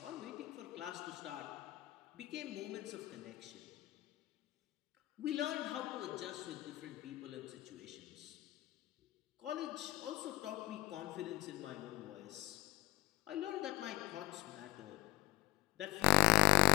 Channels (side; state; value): right; quieter; 19.7 dB